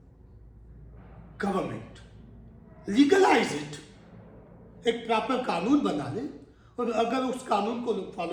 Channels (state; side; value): identical; both; correlation 1.00